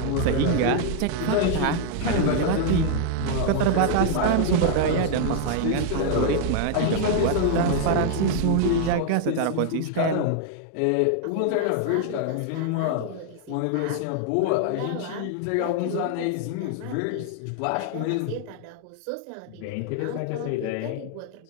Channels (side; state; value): both; different; correlation 0.00